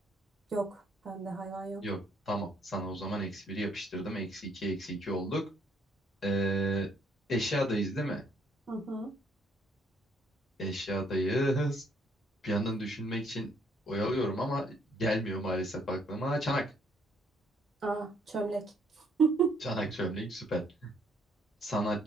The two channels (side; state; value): both; normal; correlation 0.67